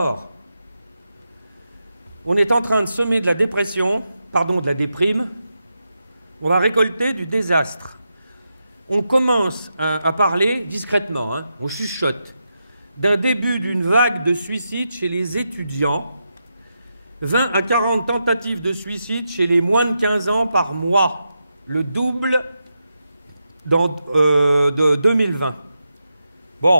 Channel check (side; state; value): both; inverted; correlation -0.87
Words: On est en train de semer de la dépression, de la déprime. On va récolter du désastre. On commence à parler discrètement, hein, on chuchote, d'un début d'une vague de suicide chez les étudiants, 20 à 40 tentatives de suicide chez les moins de 15 ans par mois, le double de 2020.